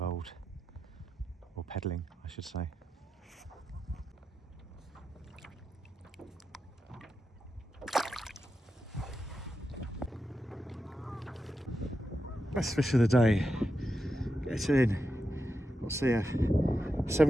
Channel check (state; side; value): normal; both; correlation 0.88